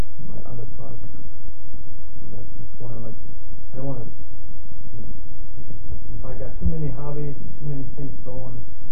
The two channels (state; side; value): late; left; 0.073 ms